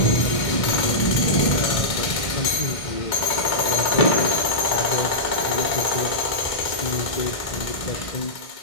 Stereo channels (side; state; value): right; late; 1.5 ms